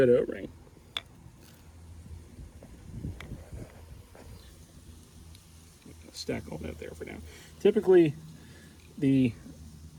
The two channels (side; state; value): both; identical; correlation 1.00